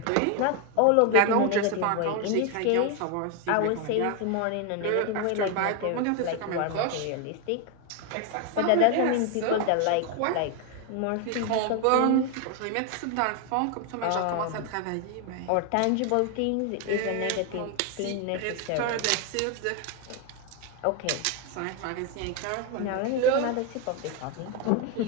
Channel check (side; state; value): both; different; correlation 0.01